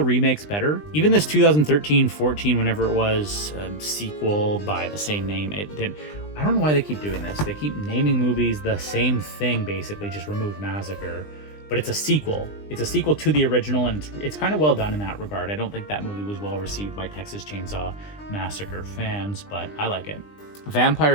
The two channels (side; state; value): right; late; 20 ms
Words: remakes better. Even this 2013-14, whenever it was, sequel by the same name, it did. I don't know why they keep doing this. They keep naming movies the same thing, basically, just remove Massacre. But it's a sequel. It's a sequel to the original, and it's kind of well done in that regard. I don't think that movie was well received by Texas Chainsaw Massacre fans, but I like it.